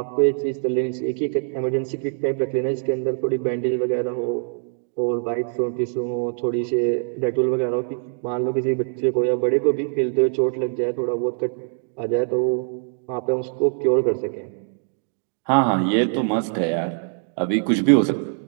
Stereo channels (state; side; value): silent; left; 63 dB below the other